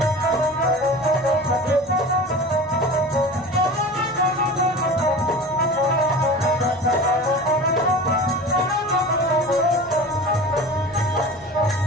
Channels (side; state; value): both; normal; correlation 0.35